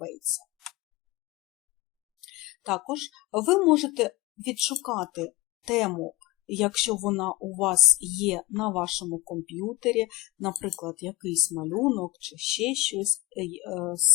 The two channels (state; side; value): quieter; right; 17.7 dB